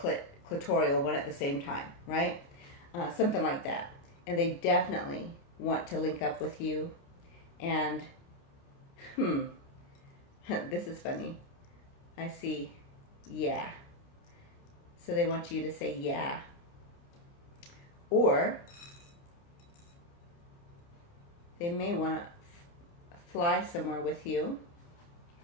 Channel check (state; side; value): late; right; 29 ms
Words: one at the same time, right? Something like that. And they definitely want to link up with you. And this is funny. I see yeah. So they want you to say yeah. Or they may want to fly somewhere with you.